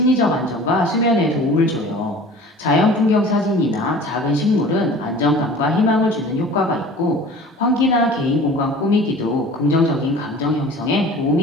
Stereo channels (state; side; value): normal; both; correlation 0.43